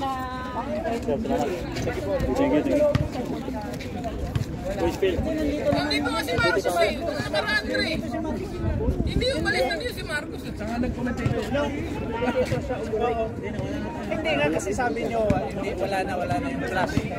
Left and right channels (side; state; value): both; identical; correlation 1.00